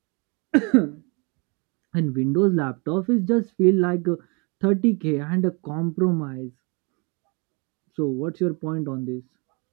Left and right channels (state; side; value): quieter; left; 31.7 dB